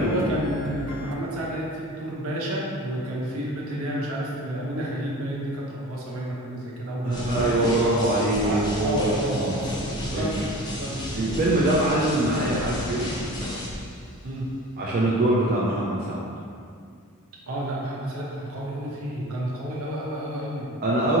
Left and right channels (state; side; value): normal; both; correlation 0.39